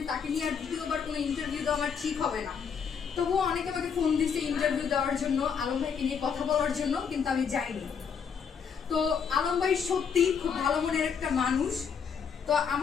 তাকে নিয়ে আর দ্বিতীয়বার কোনো ইন্টারভিউ দেওয়া আমার ঠিক হবে না। তবুও অনেকে আমাকে ফোন দিছে ইন্টারভিউ দেওয়ার জন্য, আলম ভাইকে নিয়ে কথা বলার জন্য, কিন্তু আমি যাইনি। তো আলম ভাই সত্যি খুব ভালো মনের একটা মানুষ। তো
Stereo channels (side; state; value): right; quieter; 6.7 dB